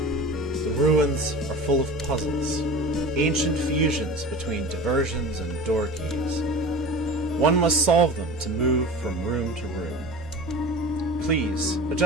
ruins are full of puzzles, ancient fusions between diversions and door keys. One must solve them to move from room to room. Please,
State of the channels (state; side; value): normal; both; correlation 0.35